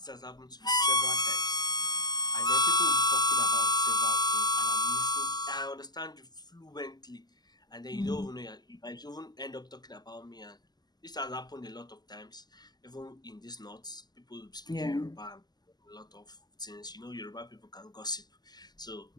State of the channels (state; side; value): late; right; 0.20 ms